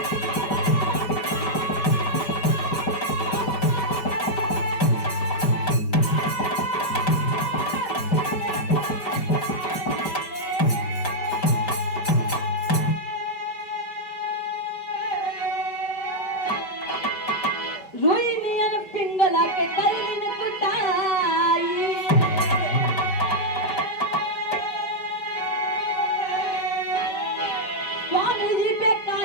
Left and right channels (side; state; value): right; late; 5.0 ms